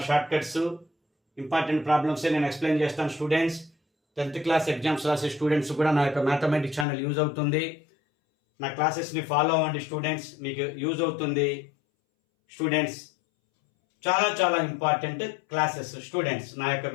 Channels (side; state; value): right; drops out; at 6.9 s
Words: షార్ట్ కట్స్ ఇంపార్టెంట్ ప్రాబ్లమ్సే నేను ఎక్స్ప్లెయిన్ చేస్తాను స్టూడెంట్స్. 10th క్లాస్ ఎగ్జామ్స్ రాసే స్టూడెంట్స్ కూడా నా యొక్క మ్యాథమెటిక్స్ ఛానల్ యూజ్ అవుతుంది. నా క్లాసెస్ని ఫాలో అవ్వండి స్టూడెంట్స్, మీకు యూజ్ అవుతుంది స్టూడెంట్స్. చాలా చాలా ఇంపార్టెంట్ క్లాసెస్ స్టూడెంట్స్. నా యొక్క